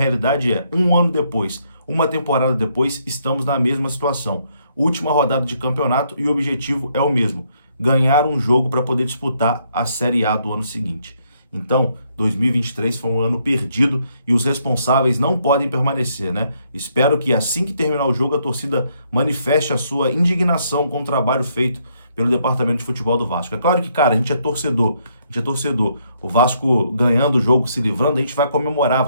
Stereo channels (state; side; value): inverted; both; correlation -0.72